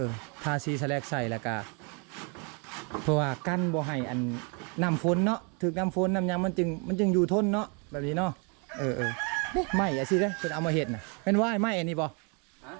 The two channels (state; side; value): quieter; left; 35.1 dB